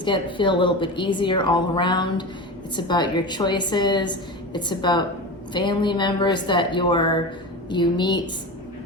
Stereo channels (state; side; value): normal; both; correlation 0.26